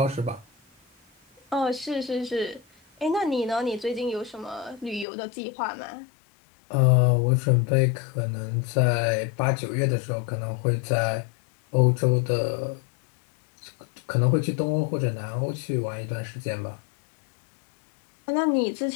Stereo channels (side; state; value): right; drops out; at 5.1 s